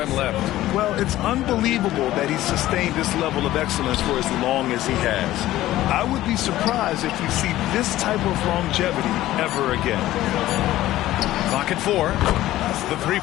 left. Well, it's unbelievable that he's sustained this level of excellence for as long as he has. I would be surprised if we see this type of longevity ever again. Clock at 4. That's the 3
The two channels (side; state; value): right; quieter; 15.1 dB